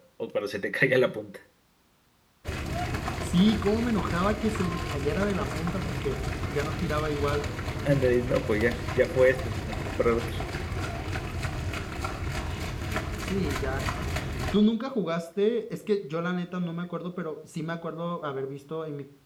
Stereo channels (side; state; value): both; identical; correlation 1.00